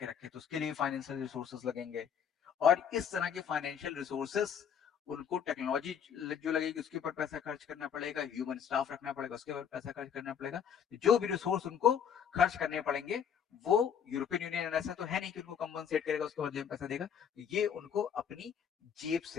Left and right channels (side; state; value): right; quieter; 8.0 dB